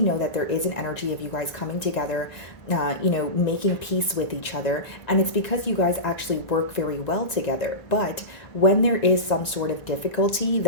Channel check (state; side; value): late; right; 1.9 ms